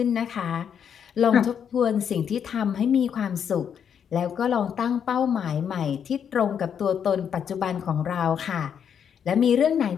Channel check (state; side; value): quieter; right; 8.0 dB